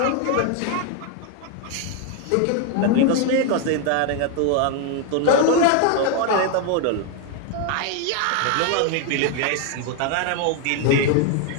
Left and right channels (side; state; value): both; different; correlation 0.01